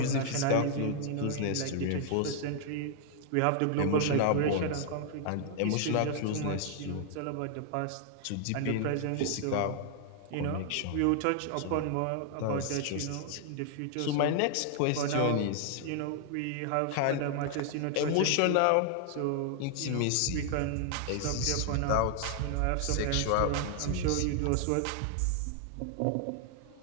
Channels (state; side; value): different; both; correlation 0.00